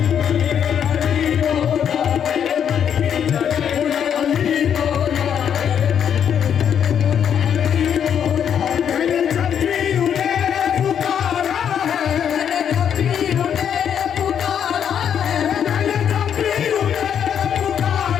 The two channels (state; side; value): quieter; right; 8.5 dB